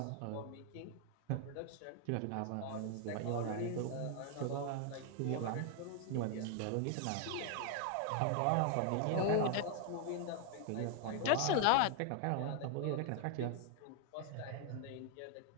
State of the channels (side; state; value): both; different; correlation 0.00